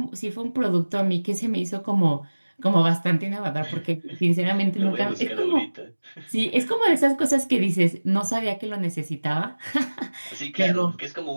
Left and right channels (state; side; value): inverted; both; correlation -1.00